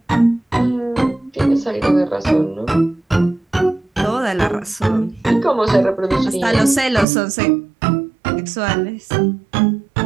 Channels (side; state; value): left; drops out; at 7.1 s